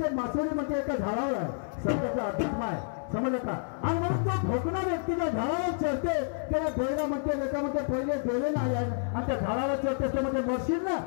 मासोळी म्हणजे एका झाडावर आहे सत्याचा अध्यात्म आहे समजलं का आणि म्हणून तो भोकणा व्यक्तीच्या झाडावर चढते त्याला डोळा म्हणते लेखा म्हणते पहिले डोळे नाही आहे आणि त्या झाडावर चढते त्यामध्ये मरशील ना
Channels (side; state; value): right; silent; 58 dB below the other